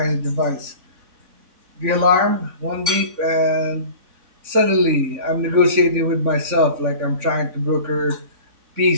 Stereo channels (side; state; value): left; late; 3.6 ms